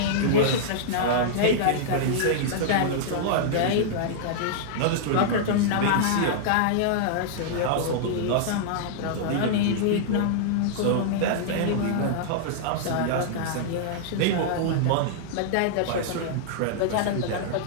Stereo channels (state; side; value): different; both; correlation -0.02